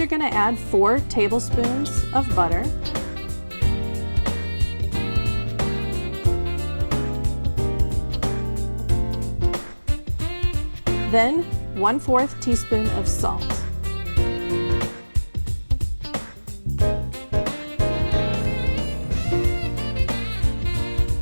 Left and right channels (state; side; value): inverted; both; correlation -1.00